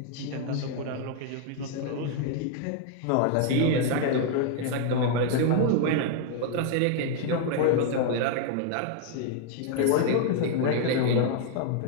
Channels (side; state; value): both; different; correlation 0.00